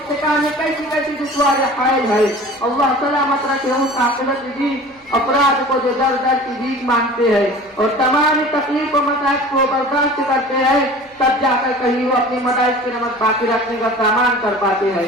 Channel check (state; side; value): noise; right; hum, 30 dB below the sound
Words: میں کیسی کیسی دشواریاں حائل ہے۔ اللہ سلامت رکھے اس عاقبت کی افراد کو جو در در کی بھیک مانگتے ہیں اور تمام تکلیف و مصائب کو برداشت کرتے ہیں، تب جا کر کہیں وہ اپنی مدارس کی نمک باقی رکھنے کا سامان کر پاتے